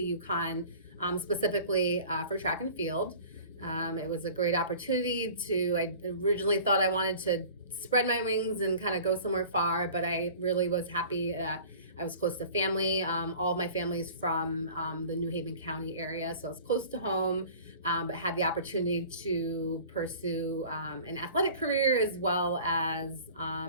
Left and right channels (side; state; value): both; inverted; correlation -0.44